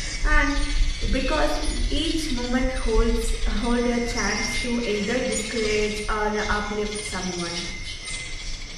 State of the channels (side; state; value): both; identical; correlation 1.00